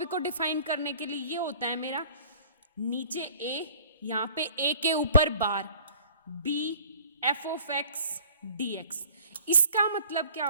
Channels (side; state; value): both; inverted; correlation -0.52